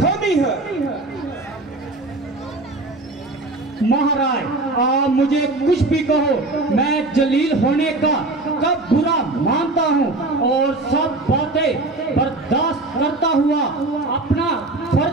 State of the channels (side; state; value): left; quieter; 3.0 dB